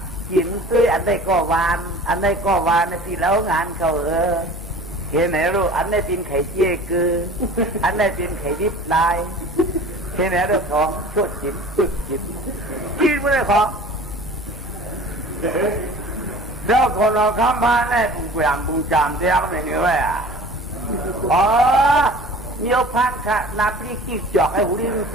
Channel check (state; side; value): normal; both; correlation 0.43